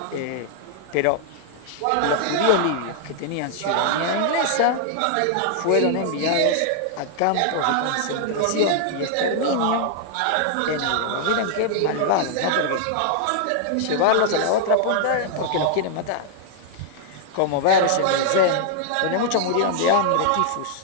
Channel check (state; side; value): different; both; correlation 0.00